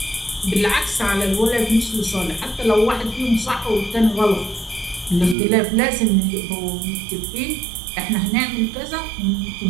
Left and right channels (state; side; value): drops out; left; at 5.4 s